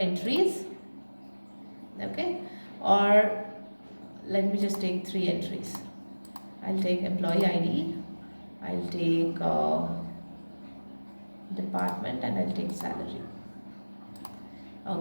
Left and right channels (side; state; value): both; inverted; correlation -1.00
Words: Okay. Or let me just take 3 entries. I'll take employee ID, I'll take department, and I'll take salary.